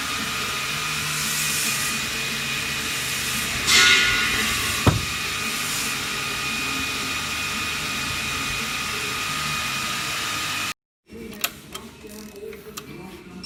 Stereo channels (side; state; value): both; identical; correlation 1.00